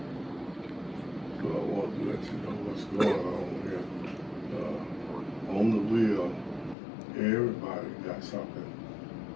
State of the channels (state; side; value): drops out; right; at 6.8 s